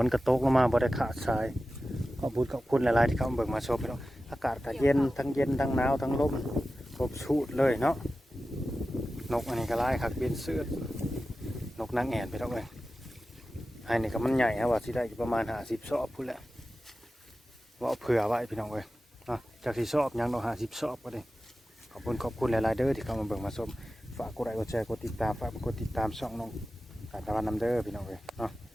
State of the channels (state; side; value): normal; both; correlation 0.94